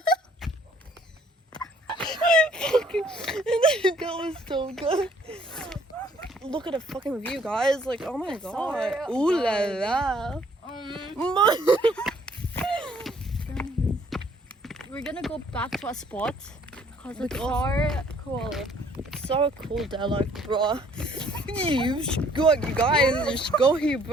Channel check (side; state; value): both; normal; correlation 0.61